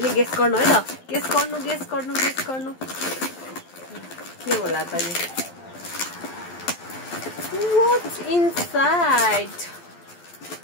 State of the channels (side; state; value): right; late; 12 ms